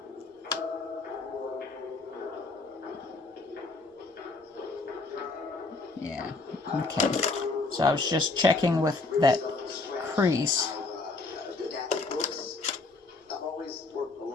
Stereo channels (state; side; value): quieter; right; 3.5 dB